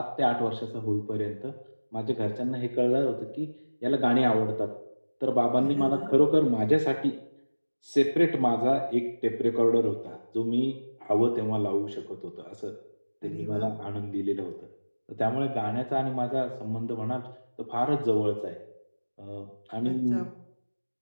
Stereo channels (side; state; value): both; inverted; correlation -1.00